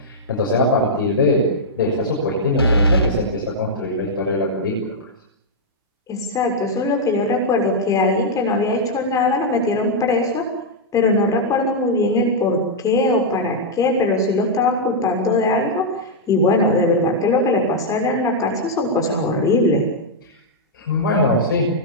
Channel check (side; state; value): both; normal; correlation -0.05